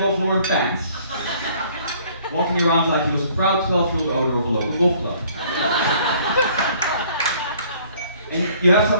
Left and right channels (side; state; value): both; inverted; correlation -0.58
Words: Ralph Lauren pants, walking around like he was a proud 12-year-old owner of a local golf club. And you have to